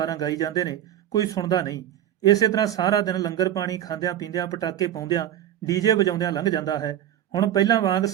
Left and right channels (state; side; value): quieter; left; 11.5 dB